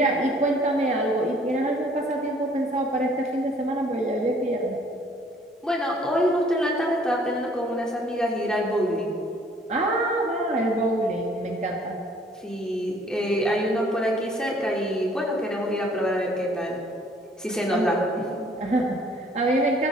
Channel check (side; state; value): both; normal; correlation 0.58